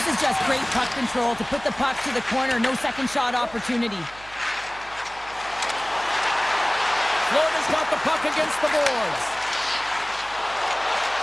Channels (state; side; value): noise; right; hum, 21 dB below the sound